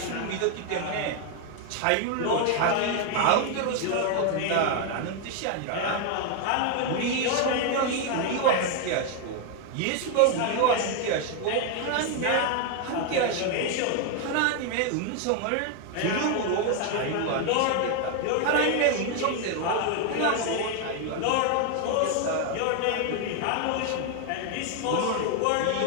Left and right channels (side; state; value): both; different; correlation 0.01